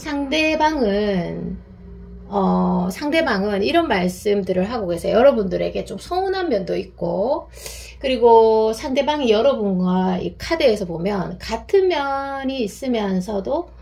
이런 말씀들을 하고 계세요. 여러분들에게 좀 서운한 면도 있고, 그리고 상대방이 여러분과 이 카드에서 보면 같은 면이 있으면서도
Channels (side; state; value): both; identical; correlation 1.00